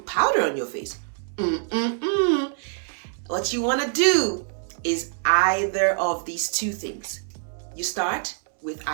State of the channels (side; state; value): left; silent; 55 dB below the other